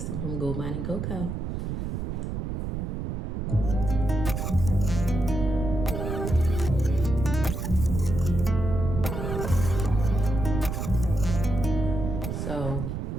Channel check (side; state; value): right; noise; rumble, 3 dB below the sound